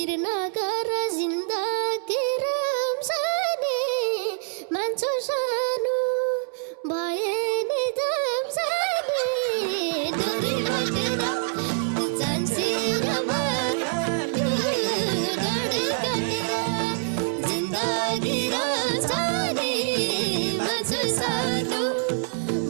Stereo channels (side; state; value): left; silent; 61 dB below the other